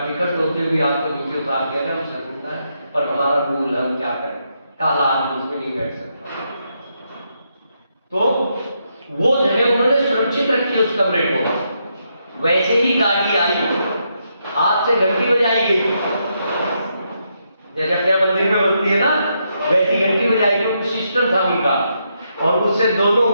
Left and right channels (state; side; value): inverted; both; correlation -0.80